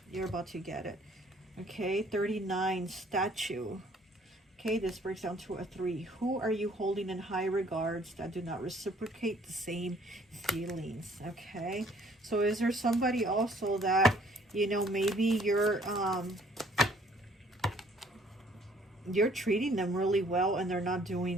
You're about to get it. Okay, 39, statue. Okay, this breaks down to a 3. Who are you holding in high regards that do not reciprocate the same feelings? Okay, so is there somebody also that, you know, maybe you're treating them really well, and they're not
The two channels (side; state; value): both; normal; correlation 0.60